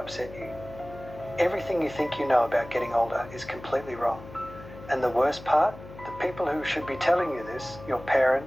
you. Everything you think you know about getting older is completely wrong. And the worst part, the people who should be telling you this, your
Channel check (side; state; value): left; noise; hum, 16 dB below the sound